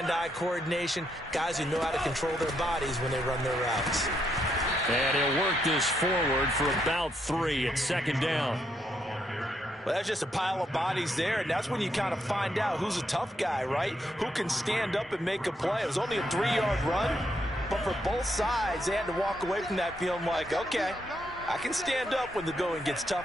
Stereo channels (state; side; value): normal; both; correlation 0.77